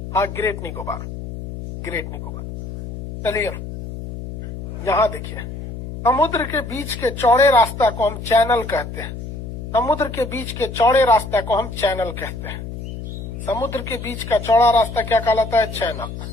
हाँ, ग्रेट निकोबार, ग्रेट निकोबार। चलिए यहां देखिए, समुद्र के बीच के चौड़े रास्ता को हम चैनल कहते हैं। समुद्र के बीच के चौड़े रास्ता को हम चैनल कहते हैं। समुद्र के बीच का चौड़ा रास्ता क्या कहलाता है? चैनल।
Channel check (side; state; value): left; noise; hum, 9 dB below the sound